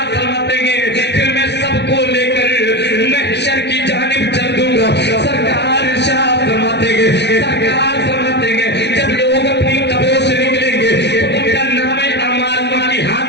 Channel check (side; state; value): right; late; 0.50 ms